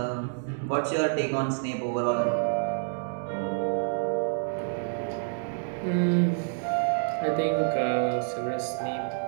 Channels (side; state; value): left; silent; digital silence